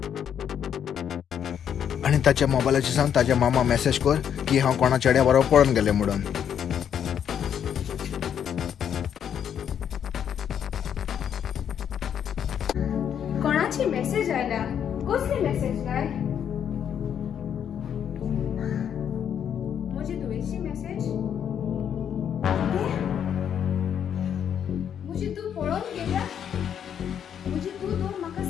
आनी ताच्या मोबायलाचेर सांग ताच्या मामा मेसेज कर की हांव कोणा चेड्या बरोबर पळोवन गेले म्हणून. कोणाची मेसेज आयला? कसली मेसेज काय? म्हजी तुवेची मेसेज? म्हजी तू पळोवन गेल्या? म्हजी तू तर म्हाका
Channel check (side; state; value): right; quieter; 8.7 dB